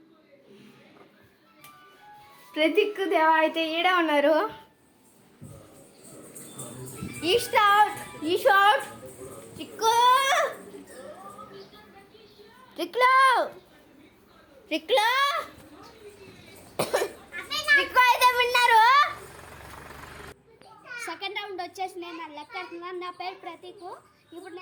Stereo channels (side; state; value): both; identical; correlation 1.00